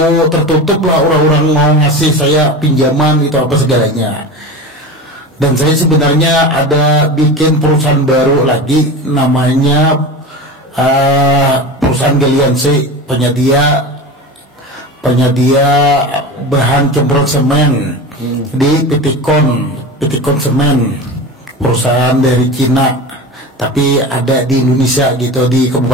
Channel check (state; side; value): normal; both; correlation 0.29